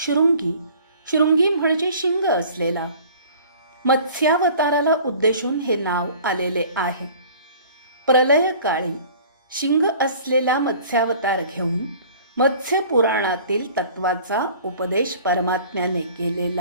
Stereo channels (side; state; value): both; inverted; correlation -0.48